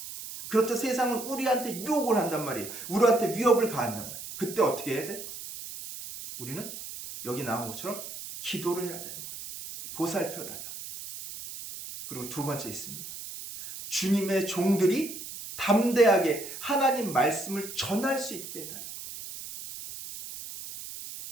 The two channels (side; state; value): right; noise; hiss, 10 dB below the sound